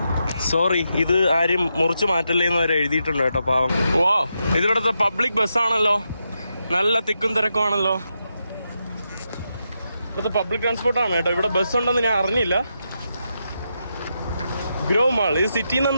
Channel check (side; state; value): both; inverted; correlation -0.84